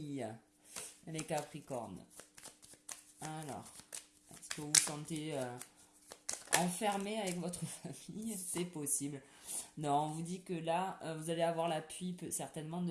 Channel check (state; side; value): identical; both; correlation 1.00